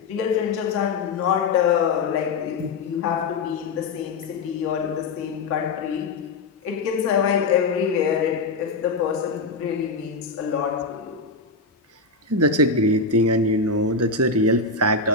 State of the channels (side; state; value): right; quieter; 3.9 dB